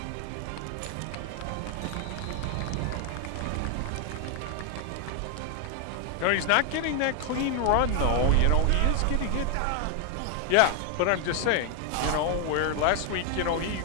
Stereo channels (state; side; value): different; both; correlation 0.00